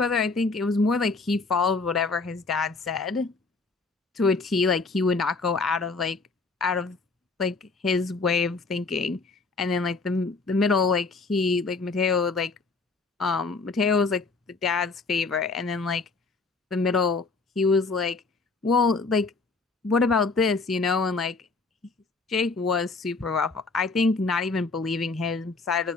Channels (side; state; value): right; quieter; 4.0 dB